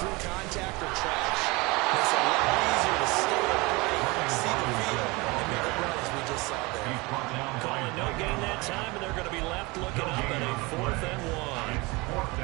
contact or trash, it's a lot easier to stay upright, see the field, and make a run as we just saw there. Calling no gain that time, and they're going to be left looking up at a 4th and 1.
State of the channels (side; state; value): left; quieter; 24.7 dB